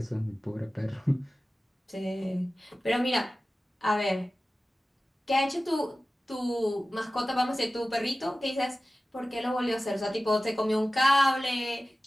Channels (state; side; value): normal; both; correlation 0.96